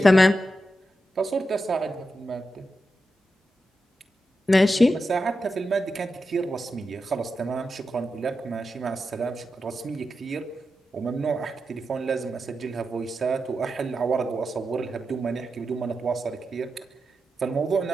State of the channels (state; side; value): normal; both; correlation 0.89